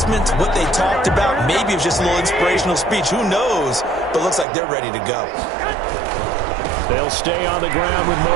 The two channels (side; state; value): left; drops out; at 4.5 s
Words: what they talked about, maybe it was just a little inspirational speech. Who knows? But looks like they're ready to go. They'll stay on the ground with